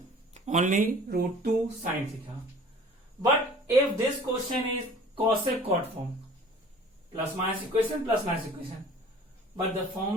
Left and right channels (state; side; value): normal; both; correlation 0.48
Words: only root 2 sine theta. But if this question is cosec cot form, plus minus equation, but the